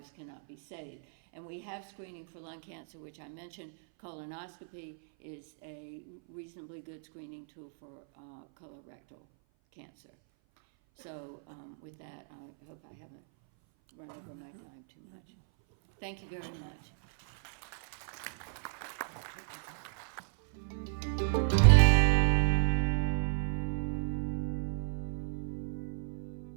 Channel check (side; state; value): left; silent; 55 dB below the other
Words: cannot be saved. And we have screening for lung cancer, which I mentioned. Colonoscopy is a reasonably good screening tool for colorectal cancer. So with that, I hope I haven't run over my time too much. Thank you very much.